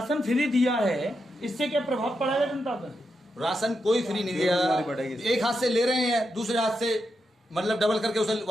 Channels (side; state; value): both; normal; correlation 0.85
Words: फ्री दिया है इससे क्या प्रभाव पड़ेगा जनता पर? राशन कोई फ्री नहीं दिया, एक हाथ से ले रहे हैं, दूसरे हाथ से मतलब डबल करके उसे